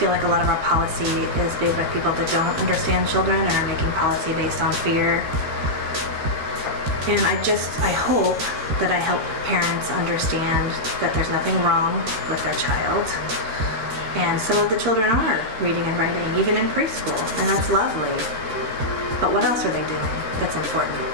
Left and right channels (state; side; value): late; left; 13 ms